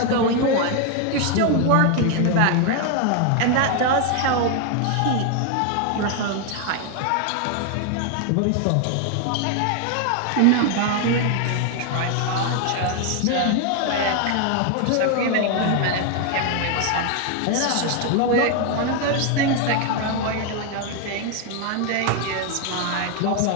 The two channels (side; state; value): both; different; correlation 0.01